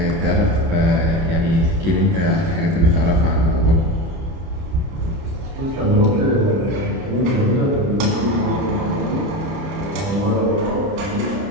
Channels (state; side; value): late; left; 30 ms